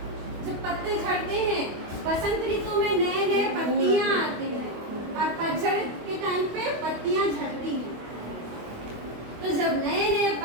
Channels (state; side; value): late; left; 25 ms